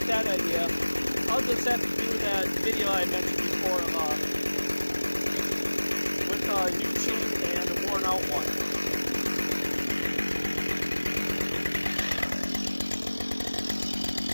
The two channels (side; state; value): both; inverted; correlation -1.00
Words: that idea. I'll just have to do that video I mentioned before with a new chain and a worn out one.